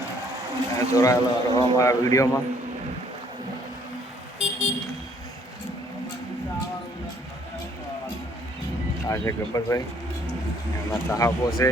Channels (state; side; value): normal; both; correlation 0.63